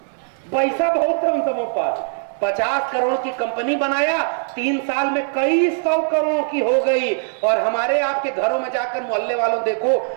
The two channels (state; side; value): silent; left; digital silence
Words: पैसा बहुत है उन सबों पर। 50 करोड़ की कंपनी बनाया, 3 साल में कई 100 करोड़ की हो गई। और हमारे आपके घरों में जाकर मोहल्ले वालों देखो,